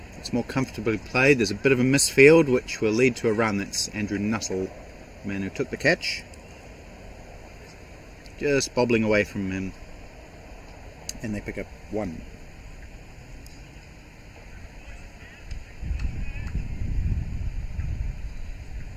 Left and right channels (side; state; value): both; identical; correlation 1.00